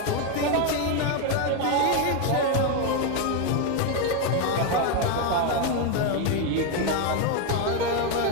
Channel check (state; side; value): different; both; correlation 0.01